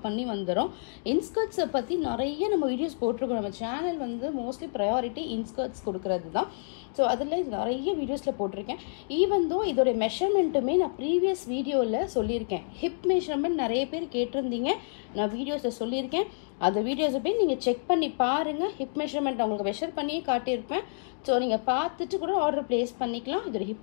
பண்ணி வந்துடும். இன்ஸ்கர்ட்ஸை பற்றி நிறைய நம்ம வீடியோஸ் போட்டிருக்கோம். நம்ம சேனல் வந்து மோஸ்ட்லி ப்ரையாரிட்டி இன்ஸ்கர்ட்ஸ் கொடுக்கறது தான். ஸோ அதில் நிறைய வீடியோஸில் போட்டிருக்கேன். ஈவன் தோ இதோடைய மெஷர்மெண்ட்டுமே நான் ப்ரீவியஸ் வீடியோவில் சொல்லியிருக்கேன். ஹிப் மெஷர்மெண்ட் நிறைய பேர் கேட்டிருந்தீங்க, நான் வீடியோஸில் சொல்லியிருக்கேன். அந்த வீடியோஸை போய் நீங்கள் செக் பண்ணி பாருங்கள். ஹிப் மெஷர்மெண்ட் உங்களுக்கு மெஷர் பண்ணியே காட்டியிருப்பேன். ஸோ நீங்கள் பார்த்துட்டு கூட ஆர்டர் ப்ளேஸ் பண்ணிக்கலாம். இதோட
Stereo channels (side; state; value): right; silent; digital silence